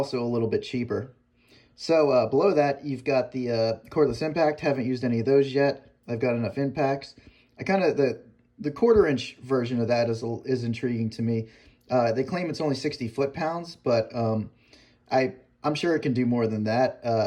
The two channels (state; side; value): identical; both; correlation 1.00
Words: a little bit cheaper. So below that, you've got the cordless impact. Haven't used any of those yet. I've got enough impacts. I kind of, the 1/4-inch version of that is intriguing to me. They claim it's only 60 foot-pounds, but I'm sure it can do more than